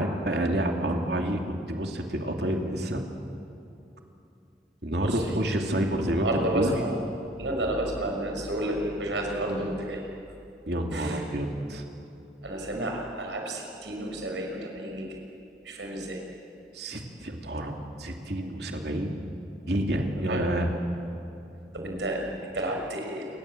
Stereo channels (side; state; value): both; normal; correlation 0.53